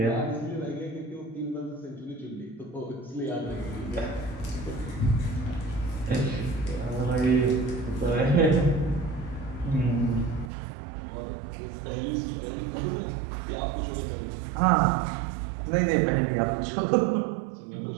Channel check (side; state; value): left; drops out; at 10.5 s